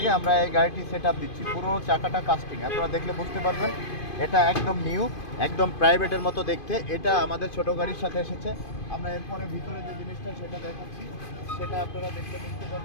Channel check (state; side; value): late; right; 2.5 ms